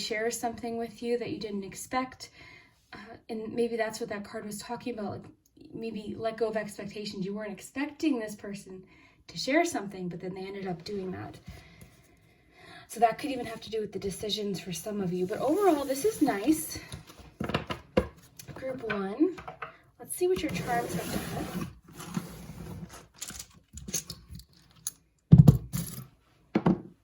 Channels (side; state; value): both; identical; correlation 1.00